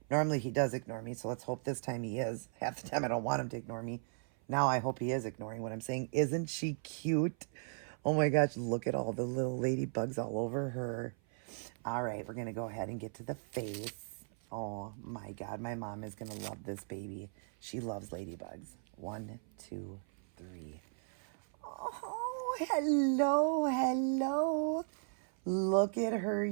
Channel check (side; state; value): left; silent; 53 dB below the other